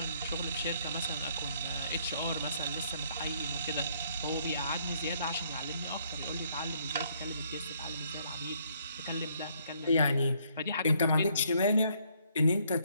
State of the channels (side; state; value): both; inverted; correlation -0.68